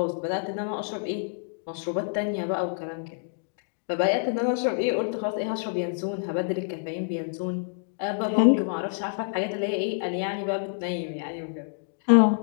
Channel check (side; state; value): right; silent; digital silence